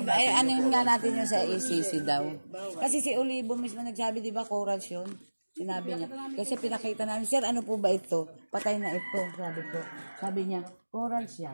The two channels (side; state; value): both; inverted; correlation -1.00